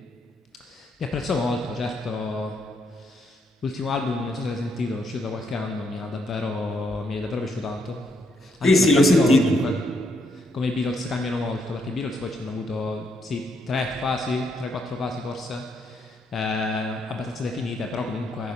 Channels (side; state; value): both; normal; correlation 0.75